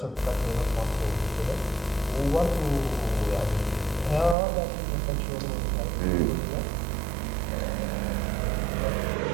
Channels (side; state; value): left; drops out; at 4.4 s